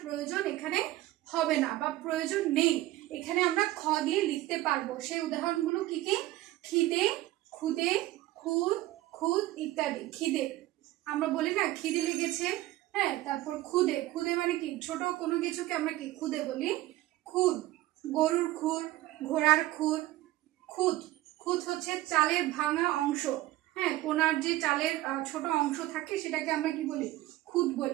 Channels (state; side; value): quieter; left; 16.4 dB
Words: প্রয়োজন এখানে হবে না বা প্রয়োজন নেই, এখানে আমরা খ দিয়ে লিখতে পারবো। সেই উদাহরণগুলো কি কি? খিদে, খুদে, খুদ, খুদ ইত্যাদি। খিদে আমরা বলি না খিদে লেগেছে, হ্যাঁ। তারপর খুদে, খুদে মানে কি? ছোট কোনো কিছুকে আমরা কি খুদে বলি। খুদ, গরুর খুর, ঘোড়ার খুর। খুদ, খুদ হচ্ছে চালের ভাঙা অংশ, হ্যাঁ, কোনার যে চালের ছোট অংশ থাকে সেটাকে আমরা কি বলি? খুদ